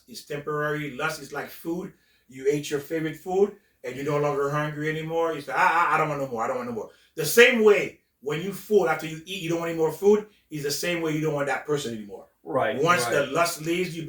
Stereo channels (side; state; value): both; identical; correlation 1.00